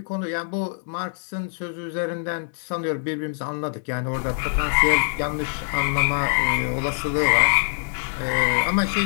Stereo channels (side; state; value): right; silent; digital silence